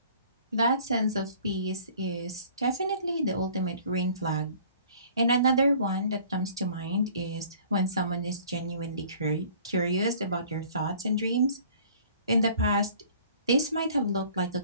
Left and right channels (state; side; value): inverted; both; correlation -0.52